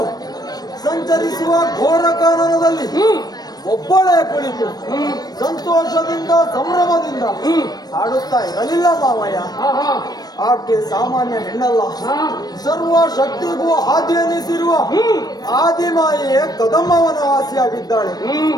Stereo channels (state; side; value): late; right; 0.19 ms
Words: ಸಂಚರಿಸುವ ಘೋರ ಕಾನನದಲ್ಲಿ ಒಬ್ಬಳೇ ಕುಳಿತು ಸಂತೋಷದಿಂದ ಸಂಭ್ರಮದಿಂದ ಹಾಡುತ್ತಾ ಇರಲಿಲ್ಲ ಮಾವಯ್ಯ. ಆಕೆ ಸಾಮಾನ್ಯ ಹೆಣ್ಣಲ್ಲ, ಸರ್ವ ಶಕ್ತಿಗೂ ಆದಿ ಎನಿಸಿರುವ ಆದಿಮಾಯೆಯೇ ಕದಂಬವನ ವಾಸಿಯಾಗಿದ್ದಾಳೆ.